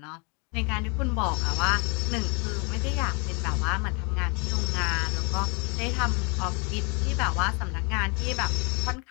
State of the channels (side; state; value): right; quieter; 32.4 dB